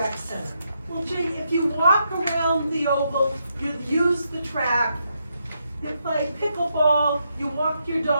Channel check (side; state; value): both; inverted; correlation -0.80